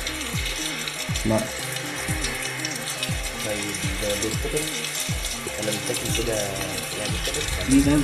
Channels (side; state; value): both; identical; correlation 1.00